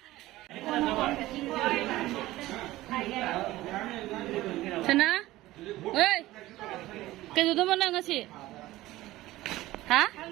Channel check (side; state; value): left; quieter; 17.0 dB